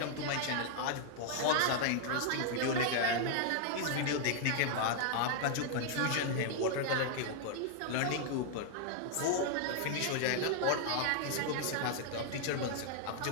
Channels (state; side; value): different; both; correlation -0.01